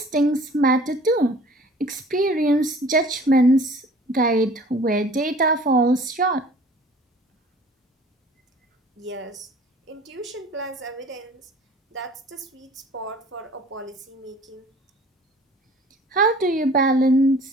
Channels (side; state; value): both; normal; correlation 0.49